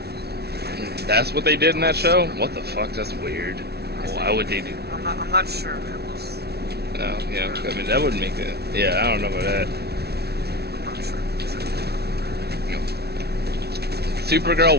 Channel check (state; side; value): late; left; 0.47 ms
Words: That's what they did in that show? What the fuck? That's weird. Why would they do? I'm not sure. It was. No, yeah. I mean, that wouldn't make it. Yeah, I don't know about that. I'm not sure. Supergirl,